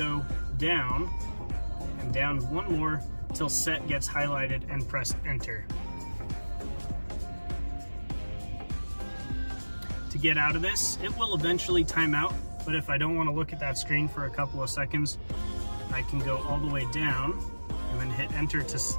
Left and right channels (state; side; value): inverted; both; correlation -1.00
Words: go down and down one more until set gets highlighted and press enter. To get out of this, it will eventually time out, but if I don't want to look at that screen for a couple of seconds, I can go all the way down and then hit enter to